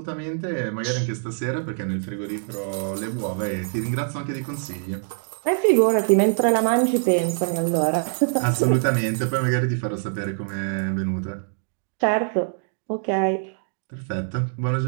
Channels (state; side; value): silent; left; digital silence